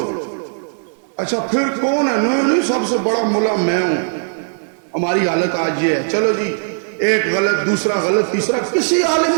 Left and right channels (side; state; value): left; silent; digital silence